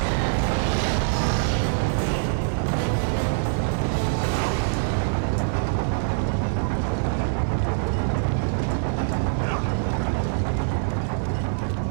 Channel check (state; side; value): silent; left; 58 dB below the other